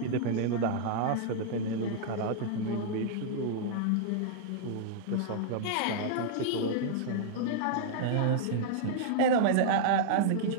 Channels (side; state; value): both; different; correlation -0.01